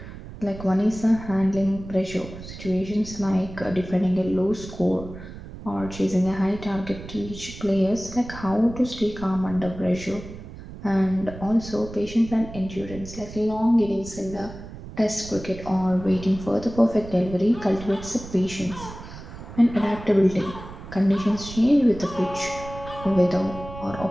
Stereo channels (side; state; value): right; noise; rumble, 13 dB below the sound